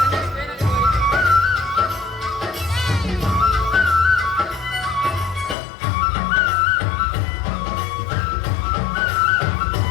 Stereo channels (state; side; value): drops out; right; at 5.6 s